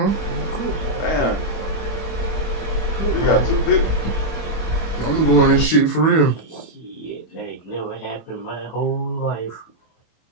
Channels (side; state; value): right; late; 25 ms